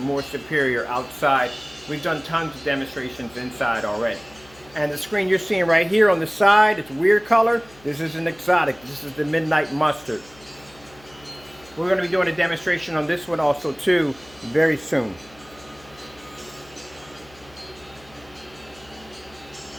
more superior outside. We've done tons of demonstrations inside already. And the screen you're seeing right here on the side, it's a weird color. This is an exotic. This is the Midnight Mustard. We're going to be doing a demonstration on this one also too very soon.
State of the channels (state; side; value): noise; left; hum, 25 dB below the sound